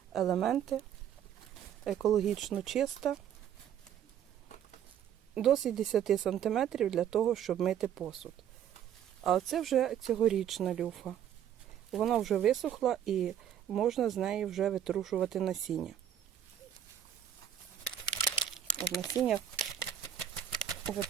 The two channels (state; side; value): quieter; left; 9.7 dB